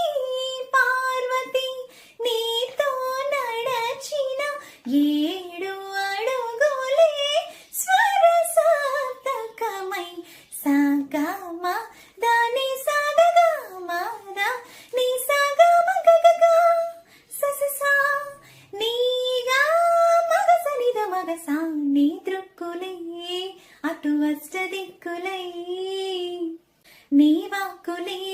పార్వతి నీతో నడచిన ఏడు అడుగులే స్వరసాతకమై సాగమ దాని సాగమ నీ సాగమ గగగా సససా నీగా మగసనిద మగసా నీ దృక్కులే అటు అష్ట దిక్కులై నీ వాక్కులే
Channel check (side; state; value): both; identical; correlation 1.00